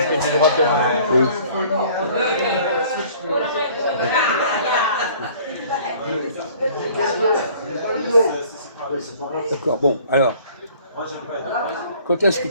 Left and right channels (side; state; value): both; inverted; correlation -0.53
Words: du droit pénal. Oui. D'accord, bon, alors, quand est-ce que